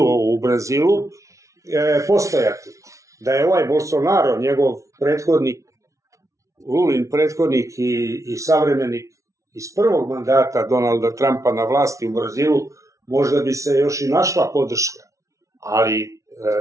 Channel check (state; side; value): late; left; 0.15 ms